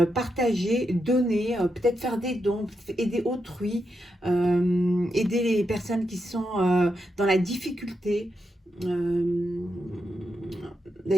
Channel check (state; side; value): normal; both; correlation 0.84